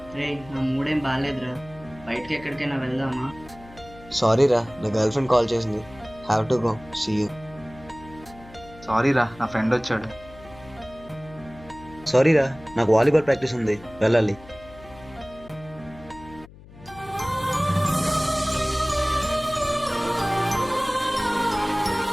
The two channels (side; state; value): left; noise; hum, 20 dB below the sound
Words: రే, నా మూడేం బాగాలేదురా. బయటికి ఎక్కడికైనా వెళ్దామా? సారీ రా, నా గర్ల్ ఫ్రెండ్ కాల్ చేసింది. Have to go. See you. Sorry రా, నా ఫ్రెండ్ వచ్చాడు. సారీ రా, నాకు వాలీబాల్ ప్రాక్టీస్ ఉంది, వెళ్ళాలి.